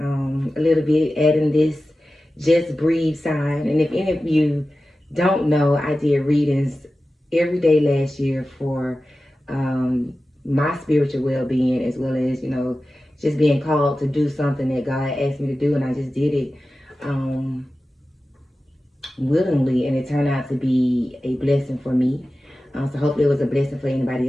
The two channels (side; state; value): both; normal; correlation 0.94